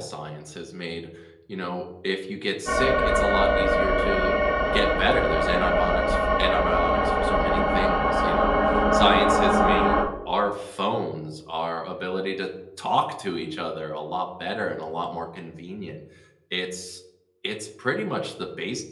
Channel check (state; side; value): identical; both; correlation 1.00